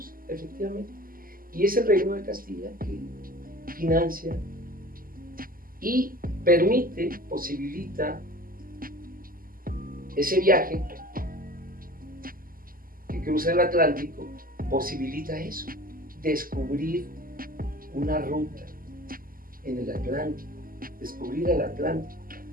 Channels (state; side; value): late; left; 0.42 ms